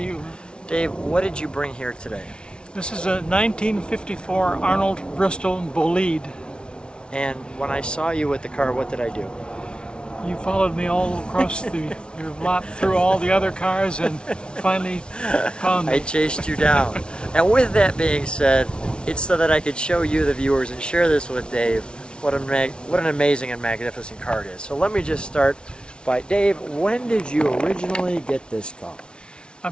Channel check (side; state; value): right; late; 0.056 ms